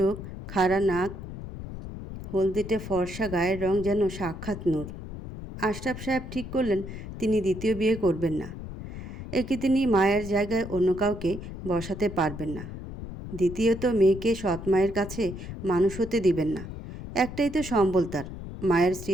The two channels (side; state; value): left; noise; rumble, 10 dB below the sound